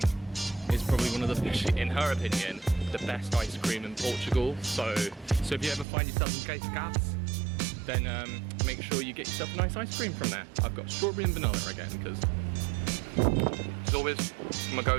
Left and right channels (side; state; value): left; drops out; at 5.9 s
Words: is probably one of the, in her opinion, the best ice cream in Portugal. So if you ever find yourself in Cascais, then make sure you get yourself a nice ice cream from there. I've got strawberry and vanilla again, because it's always my